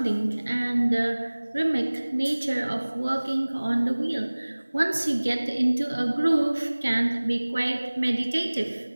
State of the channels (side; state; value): both; inverted; correlation -1.00